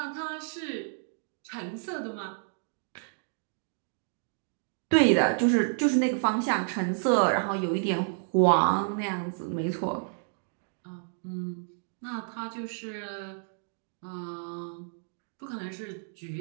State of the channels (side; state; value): left; silent; digital silence